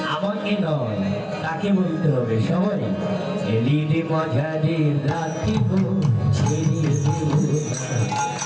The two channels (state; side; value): identical; both; correlation 1.00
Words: আমাকে নয়, তাকে বলতে হবে সবাই। এলিদে মাঝারে রাখিব, ছেড়ে দেব না।